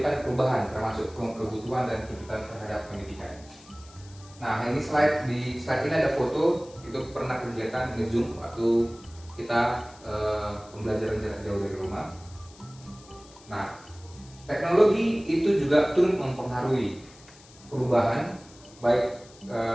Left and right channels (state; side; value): noise; left; hiss, 23 dB below the sound